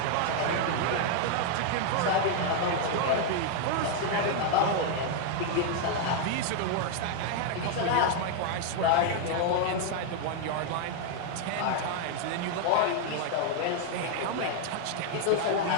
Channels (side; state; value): both; different; correlation 0.00